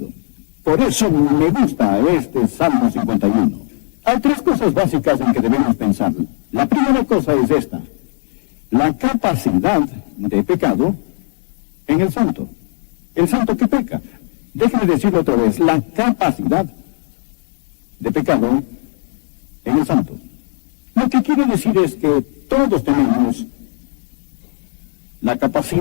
Por eso me gusta este Salmo 51. Hay tres cosas básicas en que debemos pensar. La primera cosa es esta: la capacidad de pecado en el santo. El santo que peca. Déjenme decirlo otra vez: la capacidad de pecado en el santo. Lo que quiere decir es que todos tenemos la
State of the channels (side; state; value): right; silent; digital silence